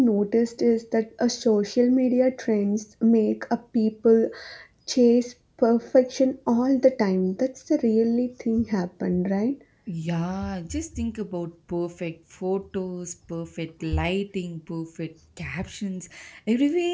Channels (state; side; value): identical; both; correlation 1.00